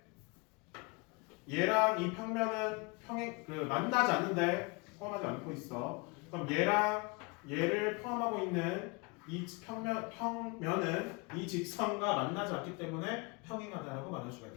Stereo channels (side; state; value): right; quieter; 29.1 dB